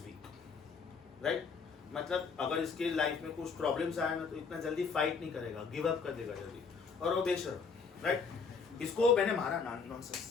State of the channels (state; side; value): quieter; right; 5.3 dB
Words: weak, right. मतलब अगर इसके लाइफ में कुछ प्रॉब्लम्स आया ना तो इतना जल्दी फाइट नहीं करेगा, गिव अप कर देगा जल्दी, और वो बेशरम, राइट। इसको मैंने मारा